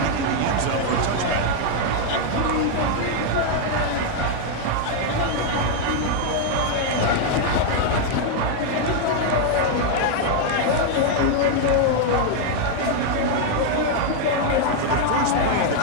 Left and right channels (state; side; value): different; both; correlation 0.00